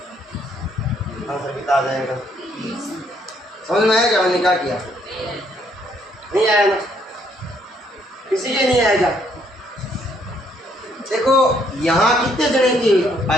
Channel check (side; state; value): both; normal; correlation 0.69